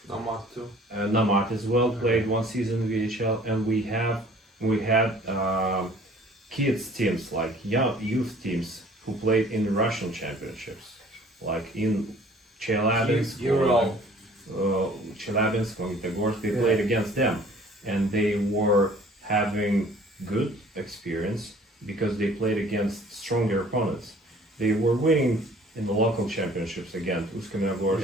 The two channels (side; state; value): both; normal; correlation 0.52